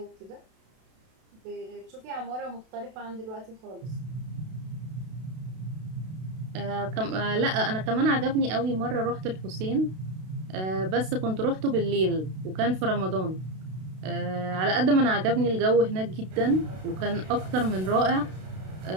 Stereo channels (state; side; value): late; left; 32 ms